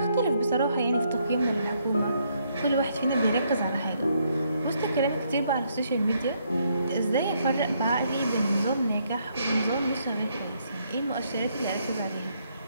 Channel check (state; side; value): inverted; both; correlation -0.73